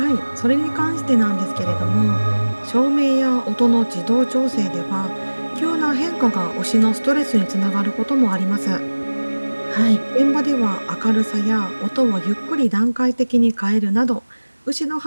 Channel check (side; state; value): both; inverted; correlation -1.00